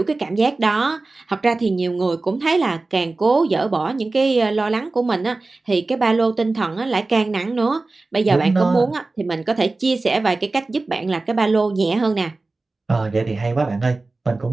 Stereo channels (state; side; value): quieter; left; 3.4 dB